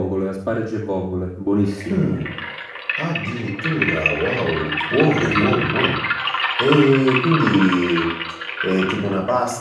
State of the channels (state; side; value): identical; both; correlation 1.00